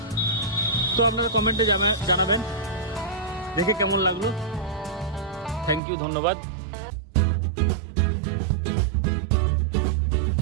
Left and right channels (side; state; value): left; drops out; at 5.8 s